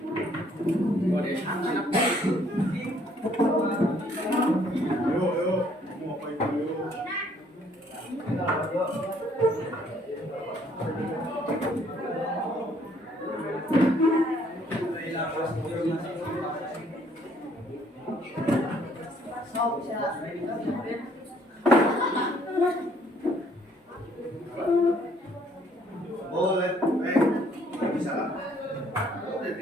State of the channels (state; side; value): normal; both; correlation 0.64